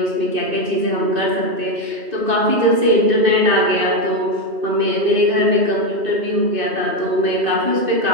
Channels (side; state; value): left; late; 2.6 ms